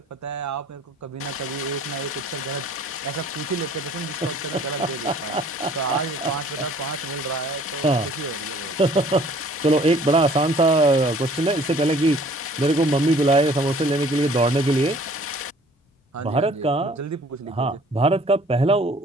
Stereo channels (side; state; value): both; normal; correlation 0.54